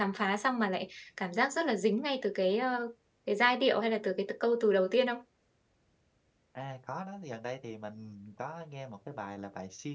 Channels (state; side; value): identical; both; correlation 1.00